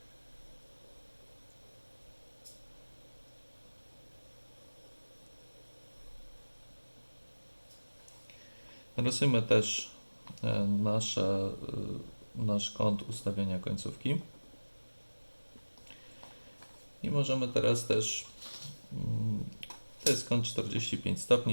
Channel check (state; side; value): inverted; both; correlation -1.00